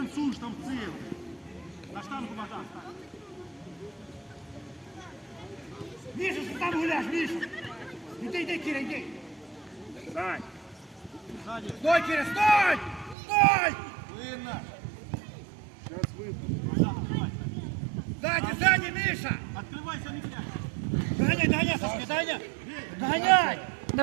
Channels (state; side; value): drops out; left; at 13.2 s